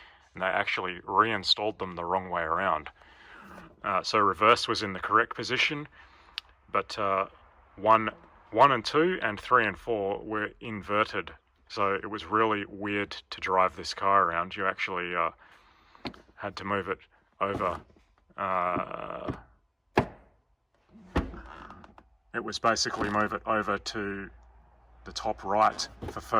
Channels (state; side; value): identical; both; correlation 1.00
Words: and they actually reinstalled them the wrong way around. So reverse was in the correct position, but 1 and 2 and 3 and 4 were inverted. So it was really weird to drive this car around. You actually had to move it over. It was basically move it over to the top right for